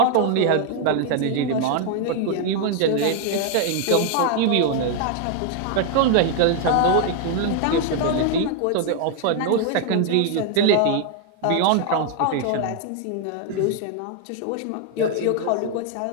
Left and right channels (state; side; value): different; both; correlation 0.00